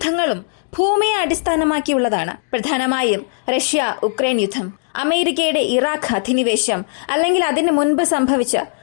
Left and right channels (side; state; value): right; silent; 62 dB below the other